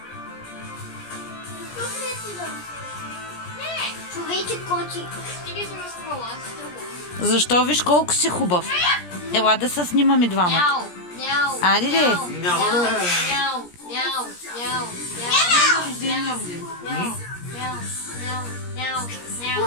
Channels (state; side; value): late; right; 17 ms